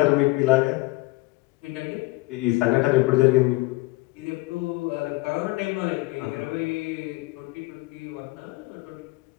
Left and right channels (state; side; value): quieter; right; 22.3 dB